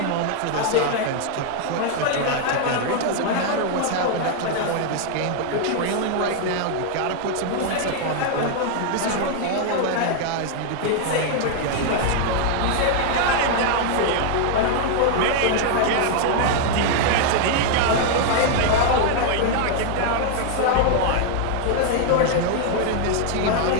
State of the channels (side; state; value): both; different; correlation 0.00